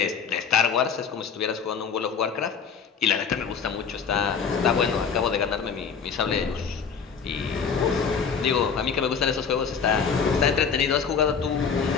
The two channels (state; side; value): quieter; right; 6.3 dB